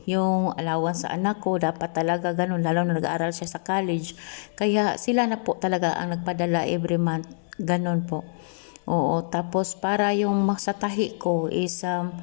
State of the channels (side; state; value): right; silent; 61 dB below the other